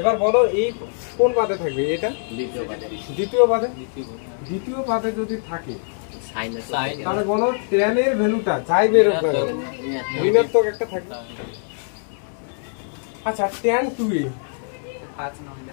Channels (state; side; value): silent; right; digital silence